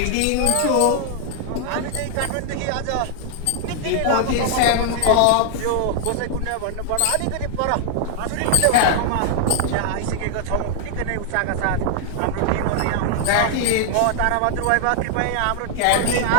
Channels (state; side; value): different; both; correlation 0.00